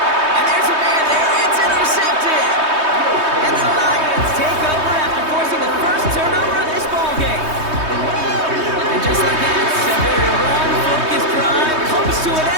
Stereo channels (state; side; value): late; left; 3.2 ms